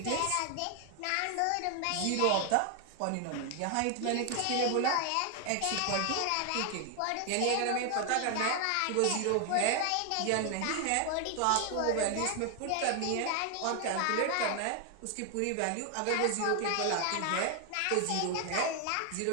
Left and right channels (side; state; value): both; different; correlation 0.00